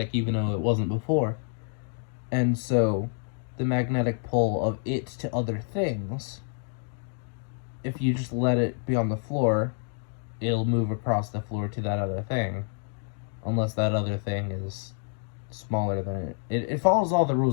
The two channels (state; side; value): silent; right; 55 dB below the other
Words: even though it wasn't before. And so, the magnetic pull of it to other things, if you just let it be on the floor, it'll move across the floor to that other thing. Unless that other thing is smaller than it. It follows all the